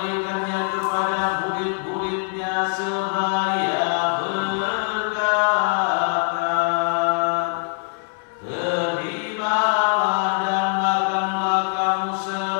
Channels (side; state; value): right; silent; 62 dB below the other